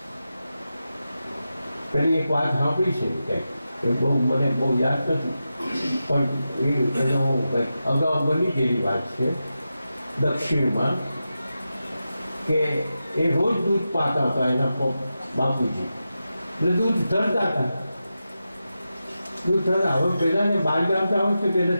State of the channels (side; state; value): both; inverted; correlation -0.91